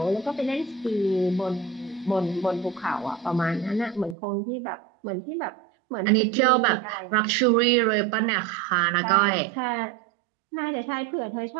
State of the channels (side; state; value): left; drops out; at 4.2 s